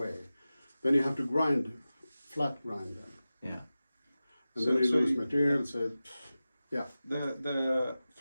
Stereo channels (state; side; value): inverted; both; correlation -0.95